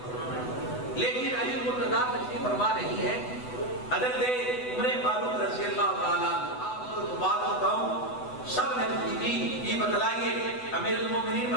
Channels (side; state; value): right; late; 8.0 ms